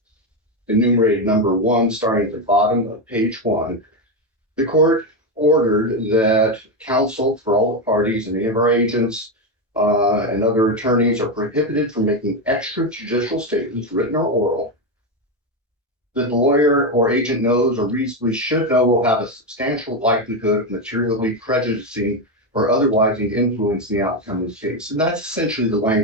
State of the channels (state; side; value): normal; both; correlation 0.10